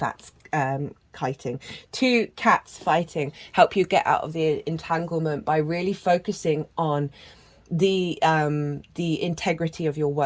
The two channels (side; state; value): both; identical; correlation 1.00